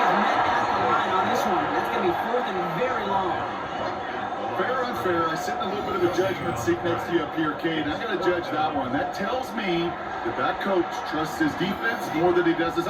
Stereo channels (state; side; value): identical; both; correlation 1.00